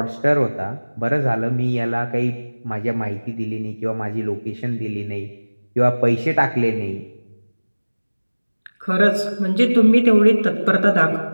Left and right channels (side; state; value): both; inverted; correlation -1.00